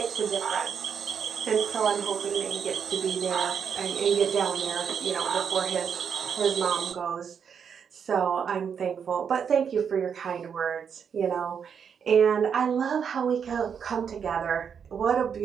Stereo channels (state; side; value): quieter; left; 7.2 dB